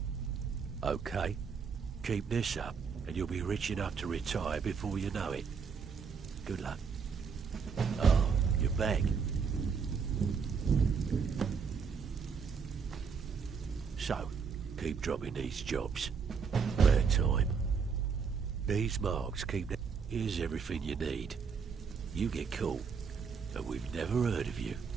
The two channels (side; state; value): left; quieter; 5.9 dB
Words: Okay. Keep this up, and you'll be rich enough to retire before you know it. Good luck. Oh, you're back. So, keep dropping these jobs. Bad time. These marks keep... Here's everything you need. You get caught, and we've never heard of you.